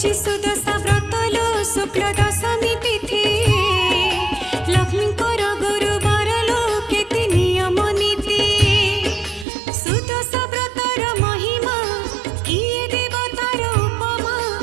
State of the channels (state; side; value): drops out; left; at 9.5 s